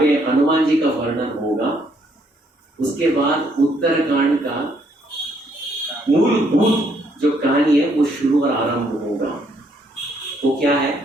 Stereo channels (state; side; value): normal; both; correlation 0.70